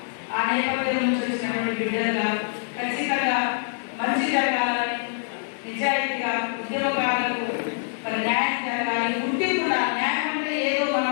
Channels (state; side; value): silent; right; digital silence